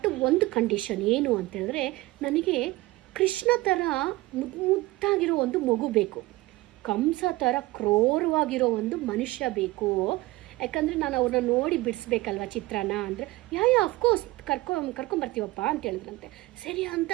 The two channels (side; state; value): left; quieter; 19.8 dB